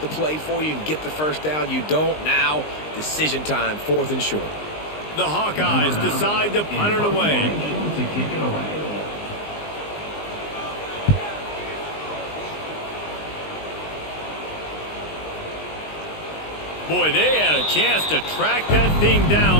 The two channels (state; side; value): late; right; 19 ms